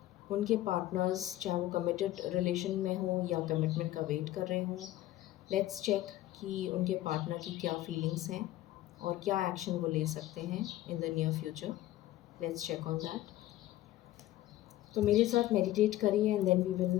उनके पार्टनर्स, चाहे वो कमिटेड रिलेशन में हो या कमिटमेंट का वेट कर रहे हों, लेट्स चेक कि उनके पार्टनर की क्या फीलिंग्स हैं और क्या एक्शन वो ले सकते हैं in the near future. Let's check on that. तो मेरे साथ मेडिटेट करिए and then we will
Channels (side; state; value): right; quieter; 14.9 dB